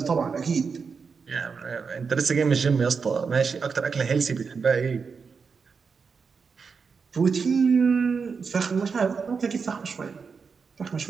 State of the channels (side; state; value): left; quieter; 5.4 dB